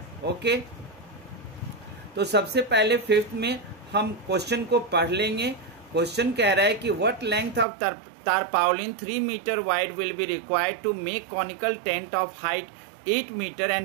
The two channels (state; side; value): drops out; left; at 7.7 s